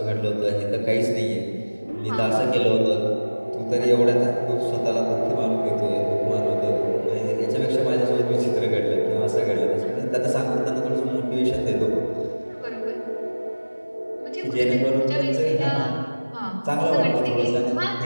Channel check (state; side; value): inverted; both; correlation -1.00